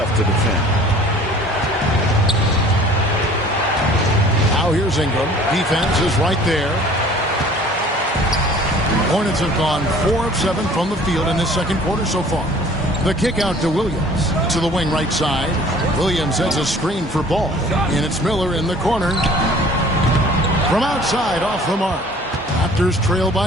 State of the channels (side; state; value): both; normal; correlation 0.50